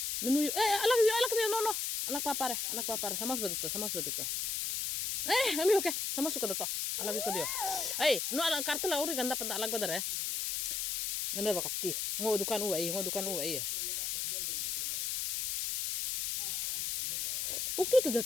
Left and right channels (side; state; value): left; noise; hiss, 1 dB below the sound